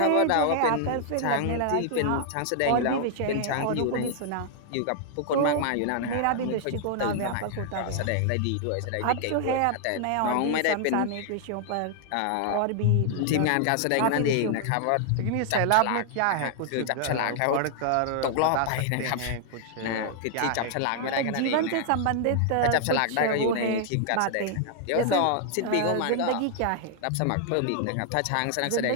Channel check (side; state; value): both; different; correlation 0.00